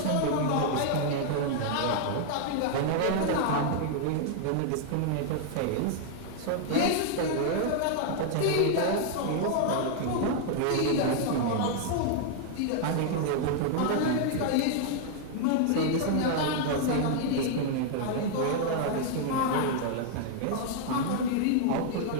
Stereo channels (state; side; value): different; both; correlation 0.00